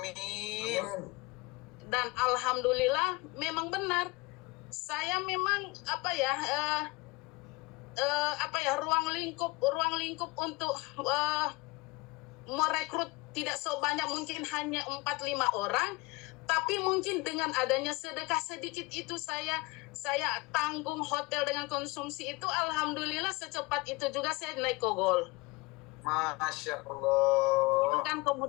Dan alhamdulillah memang benar, saya memang ruang lingkup untuk merekrut tidak sebanyak, mungkin hanya 4-5 orang, tapi mungkin dengan adanya sedekah sedikit itu saya tanggung hotel dengan konsumsi itu, alhamdulillah secepat itu juga saya naik kogol. Masya Allah. Itu kan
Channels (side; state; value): right; quieter; 24.5 dB